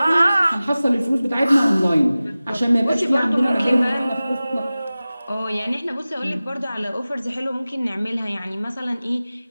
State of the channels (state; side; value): inverted; both; correlation -0.97